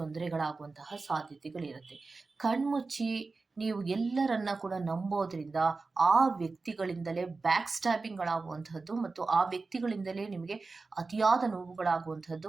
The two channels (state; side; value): quieter; left; 3.9 dB